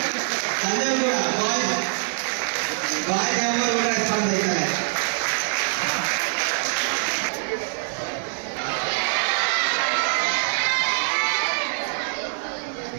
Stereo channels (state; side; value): silent; left; 60 dB below the other